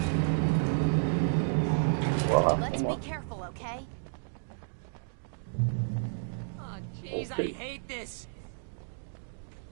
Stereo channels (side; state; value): left; silent; digital silence